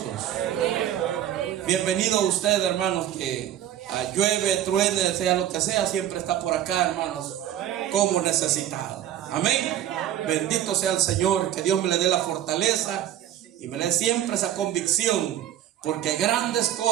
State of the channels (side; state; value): left; quieter; 11.4 dB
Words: Bienvenido a usted, hermanos, que llueve, truene, sea lo que sea, siempre está por acá, hermanos, como necesitado. Amén. Bendito sea el Señor, que Dios me le dé la fortaleza y me le dé siempre esa convicción, porque grandes